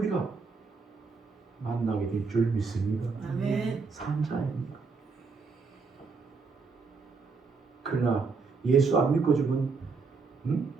만나게 될 줄 믿습니다. 아멘. 산자입니다. 그러나 예수 안 믿고 죽은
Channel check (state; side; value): quieter; left; 4.7 dB